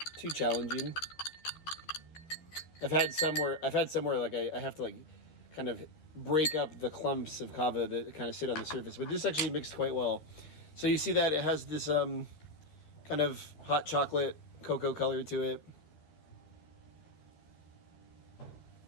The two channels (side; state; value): right; late; 13 ms